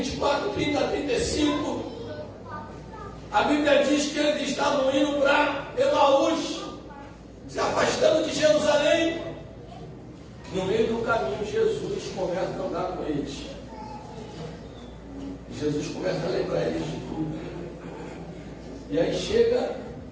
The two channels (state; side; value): identical; both; correlation 1.00